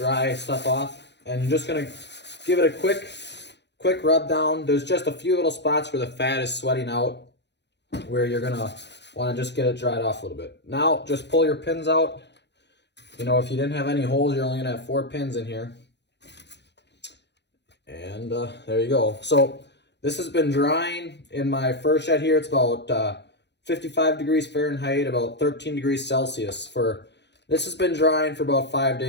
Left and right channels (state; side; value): late; right; 0.50 ms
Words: stuff off, and you're just gonna give it a quick rub down. There's just a few little spots where the fat is sweating out, where you're gonna want to just get it dried off a little bit. Now just pull your pins out. You know, if you didn't have any holes, you're only gonna have 4 pins in here. And there you go. So this has been drying in my fur shed here. It's about 55 degrees Fahrenheit, about 13 degrees Celsius. This has been drying for about 5